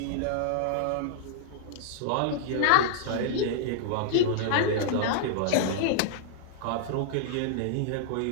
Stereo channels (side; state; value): both; different; correlation -0.01